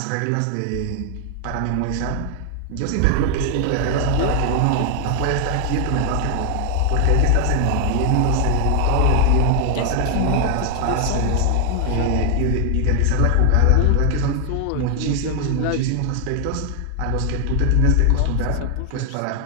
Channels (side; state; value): both; different; correlation 0.00